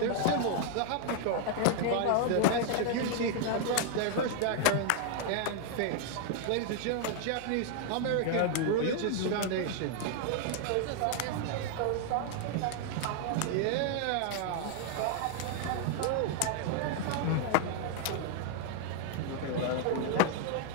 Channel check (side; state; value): both; different; correlation 0.00